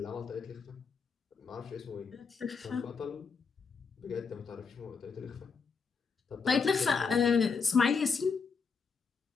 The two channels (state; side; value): quieter; right; 5.3 dB